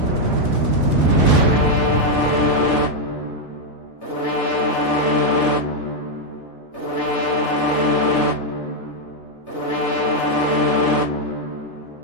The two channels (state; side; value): late; right; 3.3 ms